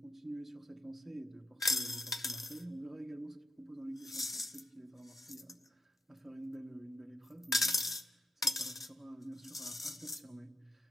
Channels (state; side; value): normal; both; correlation 0.81